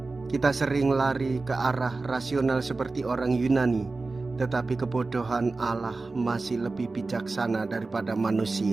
Kita sering lari ke arah rasional seperti orang Yunani, tetapi kebodohan Allah masih lebih bijaksana daripada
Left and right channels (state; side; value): quieter; left; 3.6 dB